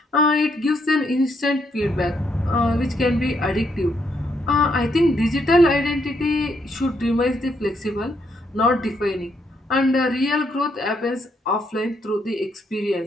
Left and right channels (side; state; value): both; normal; correlation 0.75